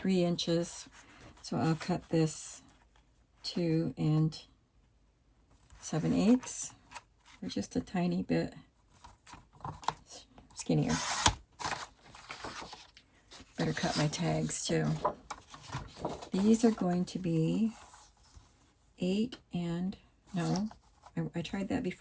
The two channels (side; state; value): both; identical; correlation 1.00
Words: inches. So I'll cut this 2 7/8, or just a tiny bit skinnier. Better cut my tags too. These are going to be 8 and, no, I tried that